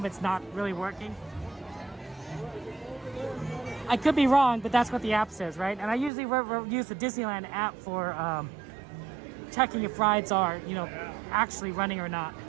it's not really working. I could be wrong, but that's what the app says, right? And I usually use the Disneyland app for checking if rides are, actually running or not.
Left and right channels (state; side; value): drops out; left; at 6.1 s